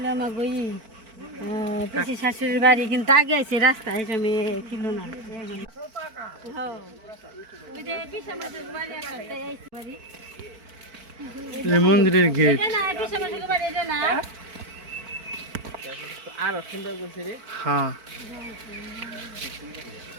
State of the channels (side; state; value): left; late; 4.5 ms